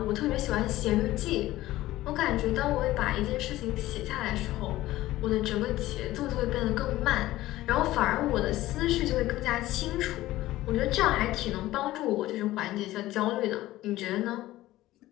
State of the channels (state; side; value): quieter; right; 16.1 dB